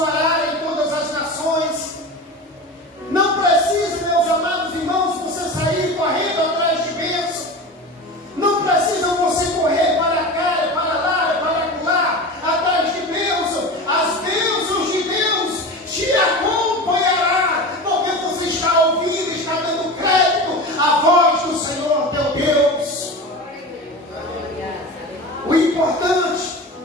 em todas as nações. Não precisa, meus amados irmãos, você sair correndo atrás de bênção. Não precisa você correr para cá, para lá, para lá, atrás de bênção. As bênçãos de Deus te acompanhará, porque você está ouvindo, está dando crédito à voz do Senhor teu Deus. O importante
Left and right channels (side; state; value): both; normal; correlation 0.29